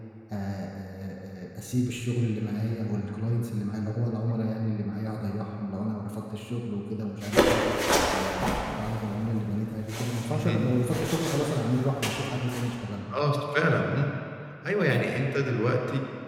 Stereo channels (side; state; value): both; identical; correlation 1.00